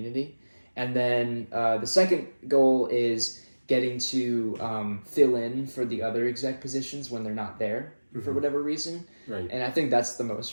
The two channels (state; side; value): inverted; both; correlation -1.00